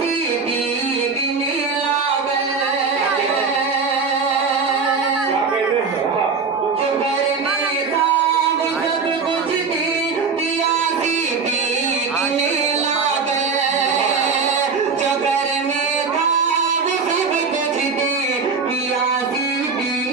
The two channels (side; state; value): left; quieter; 5.0 dB